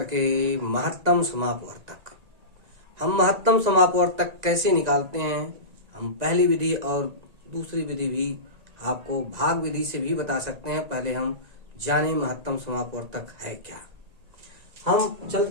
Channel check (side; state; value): left; late; 1.9 ms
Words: के महत्तम समापवर्तक। हम महत्तम समापवर्तक कैसे निकालते हैं, हम पहली विधि और दूसरी विधि भी आपको भाग विधि से भी बता सकते हैं। पहले हम जाने महत्तम समापवर्तक है क्या। हम